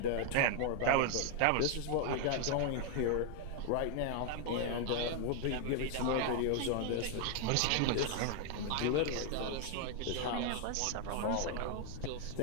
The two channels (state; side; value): different; both; correlation 0.00